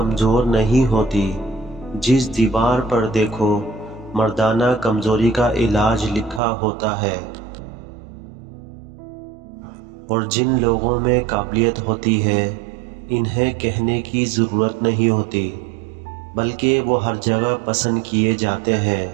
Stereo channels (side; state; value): left; drops out; at 6.4 s